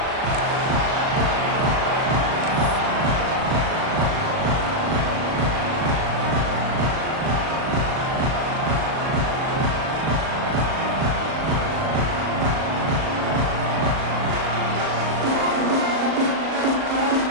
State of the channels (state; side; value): late; left; 38 ms